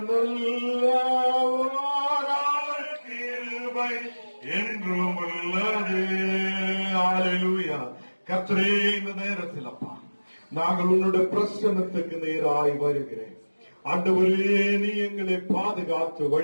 நல்லவர், அவர் கிருபை என்றும் உள்ளது. ஹல்லேலூயா. கர்த்தரே, இந்த நேரத்தில் அப்பா நாங்கள் உன்னுடைய பிரசன்னத்துக்கு நேராய் வருகிறேன். ஆண்டவரே, நீ எங்களை பாதுகாத்து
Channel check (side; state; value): both; inverted; correlation -1.00